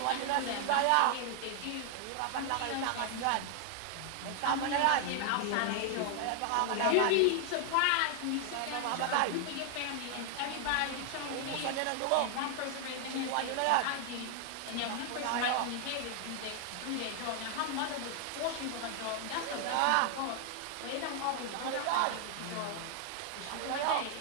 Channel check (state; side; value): different; both; correlation 0.00